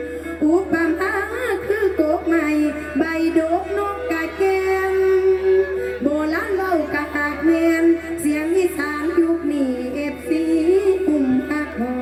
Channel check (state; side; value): identical; both; correlation 1.00